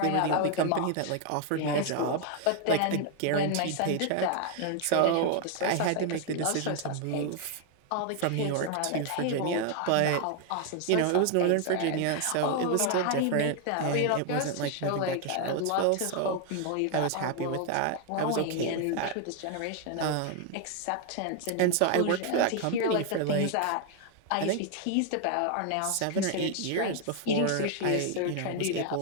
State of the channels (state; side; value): different; both; correlation 0.00